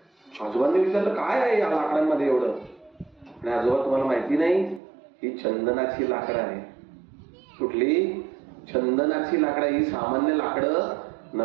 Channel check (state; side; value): drops out; left; at 4.8 s